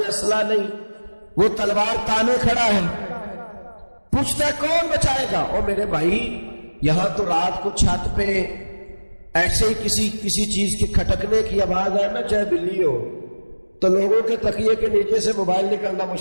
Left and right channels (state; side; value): inverted; both; correlation -1.00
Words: اسلحہ نہیں، وہ تلوار تانے کھڑا ہے، پوچھتا ہے کون بچائے گا؟ او میرے بھائی، یہاں تو رات کو چھت پہ ایسے ہی کسی چیز کے کھٹکنے کی آواز ہے نا، چاہے بلی ہو، تو لوگوں کے تکیے کے نیچے سے موبائل نکلنا